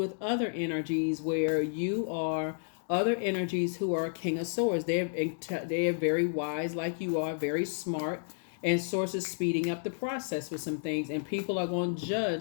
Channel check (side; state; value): right; silent; digital silence